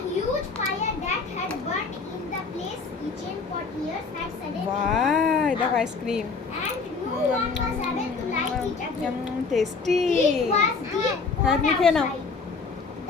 huge fire that had burnt in the place kitchen for years had suddenly বাহ, দেখো ice cream, and no one was able to light it again. Tasty. It was deep হ্যাঁ, cold তুমি খেয়ে নাও। outside.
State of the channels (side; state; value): right; quieter; 4.6 dB